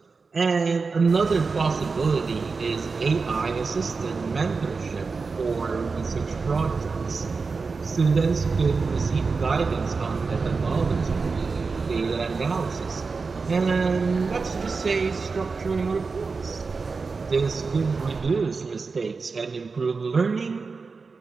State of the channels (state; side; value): quieter; left; 4.5 dB